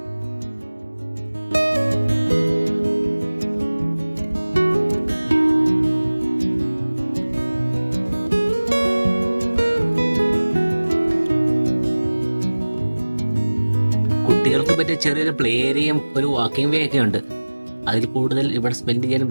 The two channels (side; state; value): both; inverted; correlation -1.00